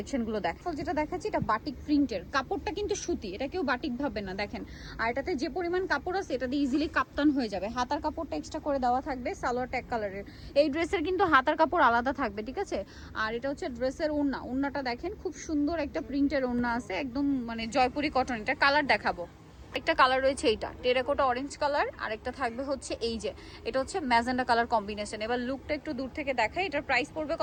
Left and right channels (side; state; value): both; identical; correlation 1.00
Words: দেখো। যেটা দেখাচ্ছি এটা বাটিক প্রিন্টের, কাপড়টা কিন্তু সুতি, এটা কেউ বাটিক ভাববে না দেখেন। আর এটাতে যে পরিমাণ কাপড় আছে এটা দিয়ে ইজিলি কাপ্তান হয়ে যাবে। হাতার কাপড়টা এক্সট্রা করে দেওয়া থাকবে, সালোয়ার ট্যাগ কালারের। এই ড্রেসের কিন্তু হাতার কাপড় আলাদা থাকবে, ঠিক আছে। আর এটা হচ্ছে ড্রেসের ওড়না, ওড়নাটা দেখেন খুব সুন্দর একটা প্রিন্টের ওড়না আছে, একদম মানে জয়পুরি কটন। এটা কালার দেখাবো, একটা কালার রয়েছে এইটা টেরাকোটা অরেঞ্জ কালার, আর একটা থাকবে হচ্ছে এই যে এটা হচ্ছে ম্যাজেন্ডা কালার কম্বিনেশন। এবার লুকটা একটু দূর থেকে দেখাই। এটার প্রাইস পড়বে